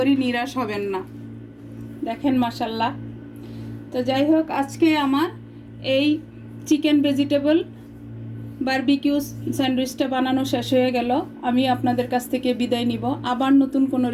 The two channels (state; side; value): identical; both; correlation 1.00